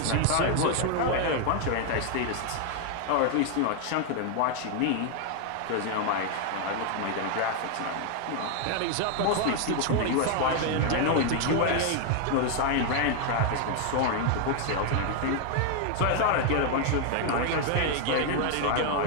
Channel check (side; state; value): both; different; correlation 0.00